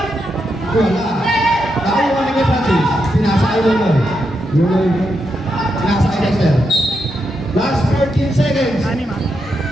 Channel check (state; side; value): normal; both; correlation 0.84